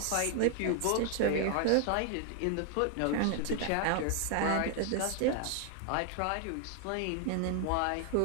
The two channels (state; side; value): different; both; correlation 0.00